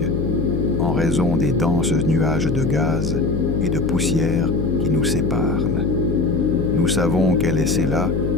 en raison des denses nuages de gaz et de poussière qui nous séparent. Nous savons qu'elle est là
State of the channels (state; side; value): noise; left; hum, 1 dB below the sound